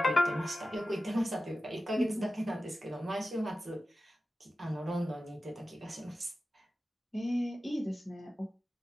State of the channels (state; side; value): normal; both; correlation 0.94